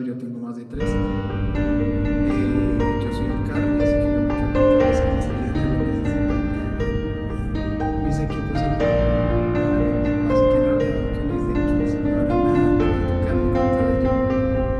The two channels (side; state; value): both; identical; correlation 1.00